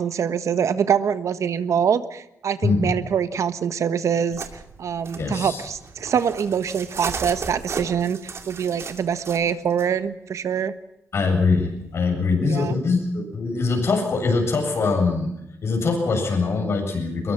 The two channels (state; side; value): normal; both; correlation 0.67